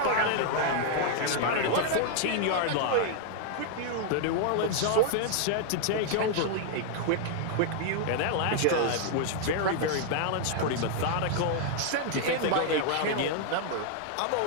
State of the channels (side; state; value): both; different; correlation 0.00